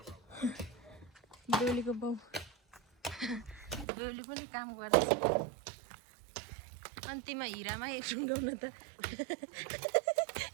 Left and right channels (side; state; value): left; drops out; at 3.9 s